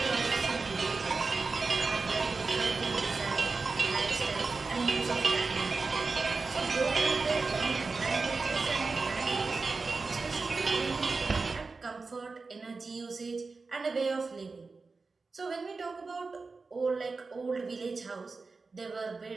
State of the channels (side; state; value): left; quieter; 4.1 dB